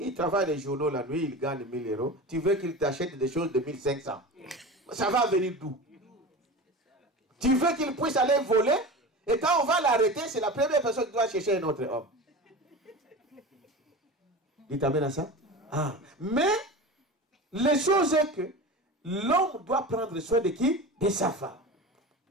travaille les journaux la nuit, il gagne 1000 euros. Tu veux qu'il t'achète des choses de 1500. Ça va venir d'où? Tu veux qu'il puisse aller voler? Et quand on va l'arrêter, c'est la première personne qui doit chercher un autre homme. Dites amen à ça. Ah. Mais, les choses est que l'homme doit prendre soin de qui? De sa femme.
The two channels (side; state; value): both; normal; correlation 0.31